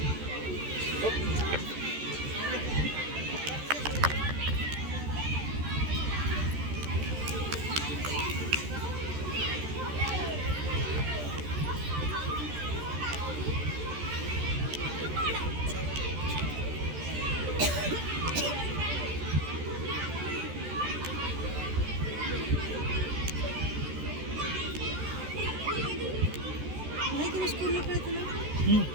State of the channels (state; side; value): late; left; 14 ms